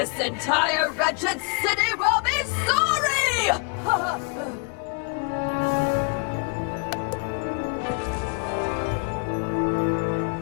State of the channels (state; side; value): quieter; right; 36.8 dB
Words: entire wretched city will be sorry!